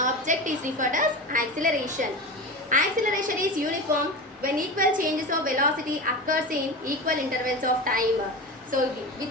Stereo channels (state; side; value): normal; both; correlation 0.27